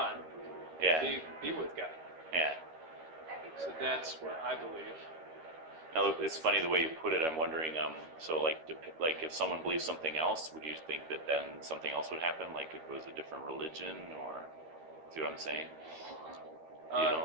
Yeah. be with God. Yeah. So that's what I believe. Now, it's funny the way you put it. I'm wondering, so like if someone believes something else, would you think that then something else would happen? Like if it was a different religion, or see what I'm saying? You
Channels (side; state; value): left; late; 13 ms